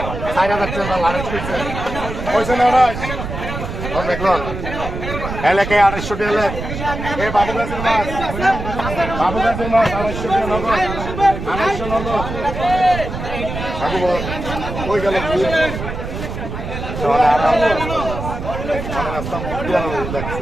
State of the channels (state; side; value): noise; right; rumble, 6 dB below the sound